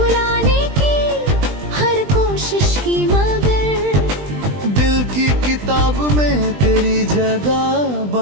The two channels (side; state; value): left; late; 20 ms